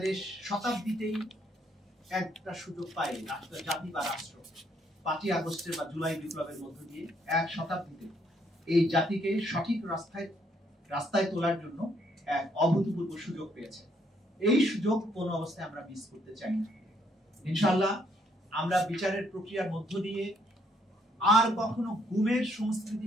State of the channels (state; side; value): normal; both; correlation 0.70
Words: শতাব্দীতেই একটা সুযোগ পাই, রাষ্ট্র, জাতি বা রাষ্ট্র 5ই আগস্টের বা জুলাই বিপ্লবের মধ্য দিয়ে এক শতাব্দীতে এই জাতিকে সঠিক রাস্তায় তোলার জন্য এক অভূতপূর্ব সুযোগ পেয়েছে। এই সুযোগ কোন অবস্থায় আমরা মিস করতে চাই না। ইনশাআল্লাহ আমরা বিচারের প্রক্রিয়ার মধ্য দিয়ে আর কখনো গুমের সংস্কৃতি